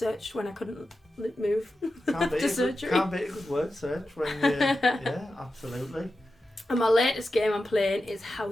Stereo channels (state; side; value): normal; both; correlation 0.91